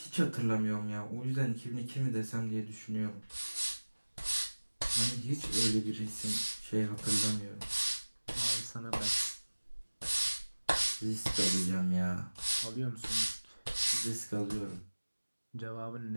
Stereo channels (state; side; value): inverted; both; correlation -1.00